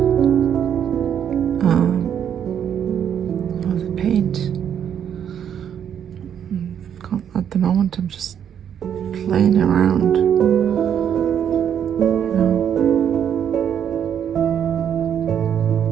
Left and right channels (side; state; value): left; quieter; 8.9 dB